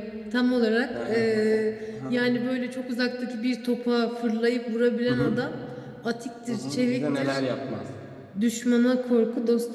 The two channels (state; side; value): identical; both; correlation 1.00